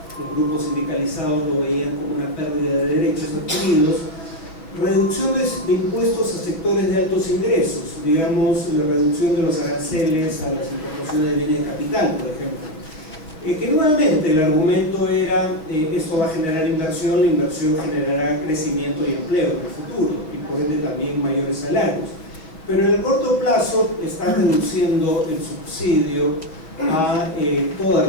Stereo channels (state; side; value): late; right; 6.3 ms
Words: los grupos sindicalizados lo veían como una pérdida de derechos adquiridos, reducción de impuestos a sectores de altos ingresos, digamos, la reducción de los aranceles a las importaciones de bienes de capital, por ejemplo. Que nuevamente el argumento era, esto va a generar inversión, la inversión generará crecimiento y empleo en el futuro, y por ende también mayores salarios. Pero en el corto plazo está reduciendo el subsidio a toda